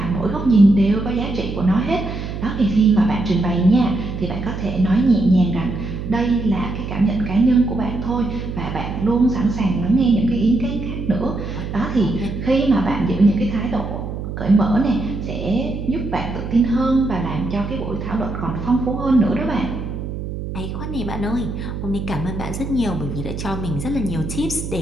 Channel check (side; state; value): right; noise; hum, 6 dB below the sound